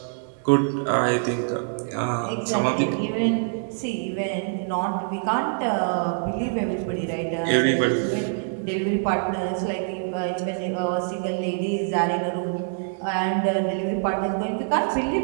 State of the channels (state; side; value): silent; left; digital silence